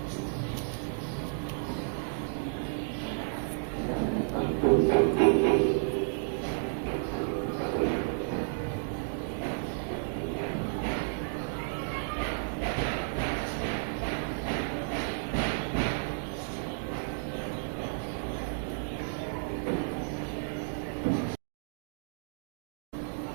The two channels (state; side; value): silent; left; digital silence